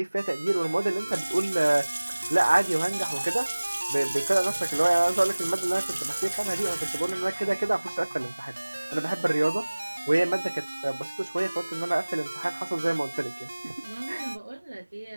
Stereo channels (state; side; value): inverted; both; correlation -1.00